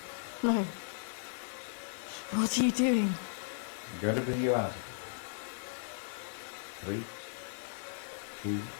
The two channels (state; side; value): silent; right; digital silence